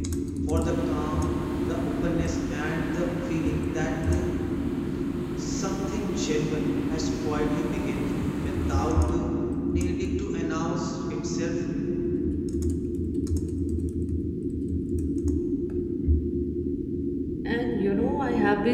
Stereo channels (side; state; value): both; identical; correlation 1.00